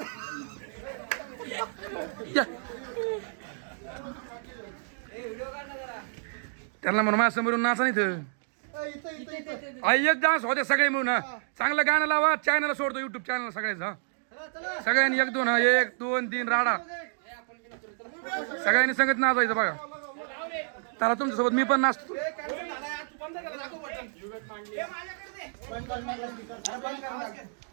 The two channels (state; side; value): silent; left; digital silence